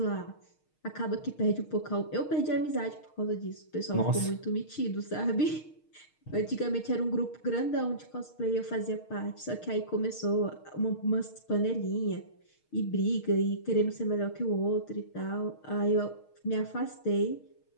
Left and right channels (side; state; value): right; late; 6.5 ms